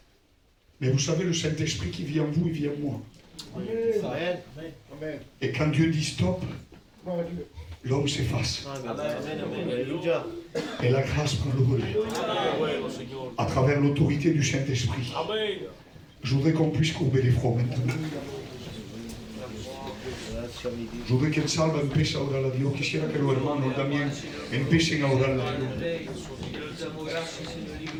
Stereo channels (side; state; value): both; identical; correlation 1.00